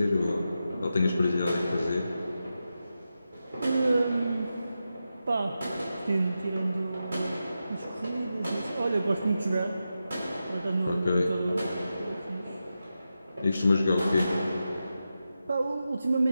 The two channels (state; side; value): inverted; both; correlation -0.90